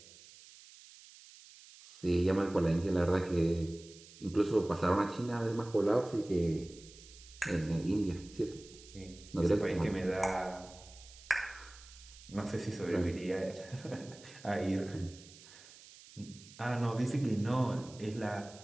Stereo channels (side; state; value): right; noise; hiss, 20 dB below the sound